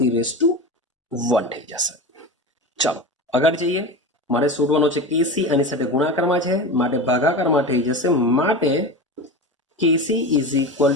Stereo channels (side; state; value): both; normal; correlation 0.26